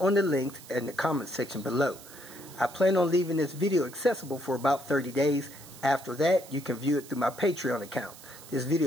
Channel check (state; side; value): noise; right; hiss, 18 dB below the sound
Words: the links in the comment section below. I plan on leaving this video accessible for about 30 days. After that, you can view it through my Patreon account. This